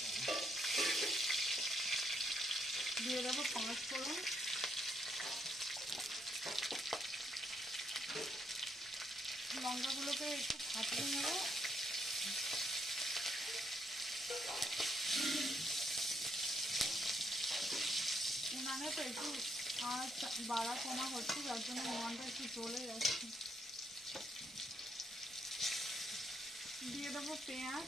দিয়ে দেবো, 5 ফোড়ন, লঙ্কাগুলোকে একটু ফাটিয়ে নেব। উনানে তো একটু আঁচ বাড়া কমা হচ্ছে, যার জন্য উনানটা একটু জ্বলে যাচ্ছে। দিয়ে দেবো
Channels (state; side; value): normal; both; correlation 0.75